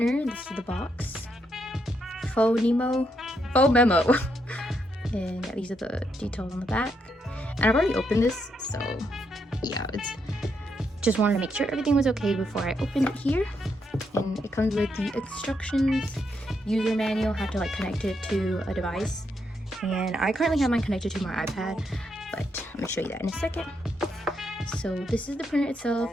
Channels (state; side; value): normal; both; correlation 0.79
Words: This is the box. Phomemo. And yeah, these are the details on the back. And I've already opened this, so yeah, it's just wanted to make sure everything was okay before I opened it here. And it comes with the instructions, user manual, how to like connect it to a device. And I currently have mine connected to my iPad, but I'm gonna show you that in a second. So this is the printer itself.